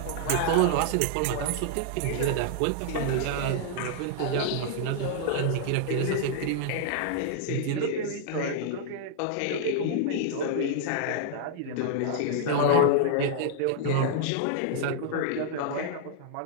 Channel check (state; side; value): different; both; correlation -0.01